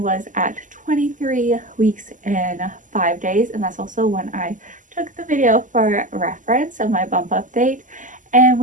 was at 23 weeks and 5 days, and that's also when I took the video for reference of my bump update. And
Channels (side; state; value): left; late; 0.37 ms